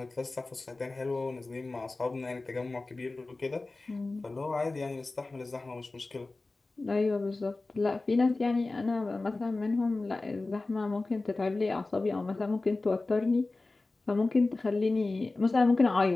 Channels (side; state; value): right; quieter; 3.3 dB